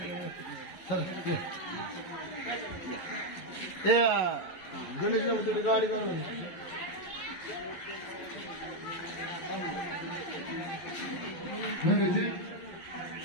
गणेशला तरी गाडी चालू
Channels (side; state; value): right; late; 11 ms